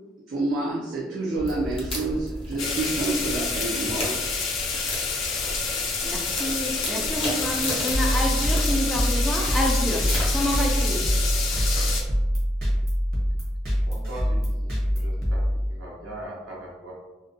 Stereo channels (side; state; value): both; normal; correlation 0.73